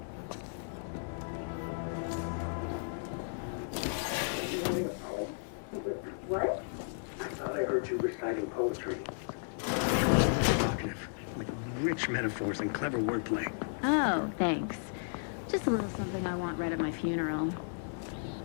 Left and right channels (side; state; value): right; silent; 55 dB below the other